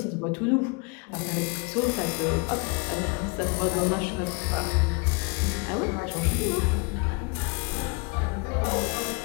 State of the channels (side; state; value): right; quieter; 31.3 dB